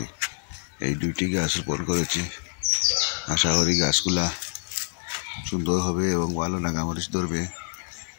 এই দুইটি গাছ রোপণ করেছি। আশা করি গাছগুলা সুন্দর হবে এবং ভালো নাগামরিচ ধরবে।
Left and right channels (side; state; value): right; silent; 61 dB below the other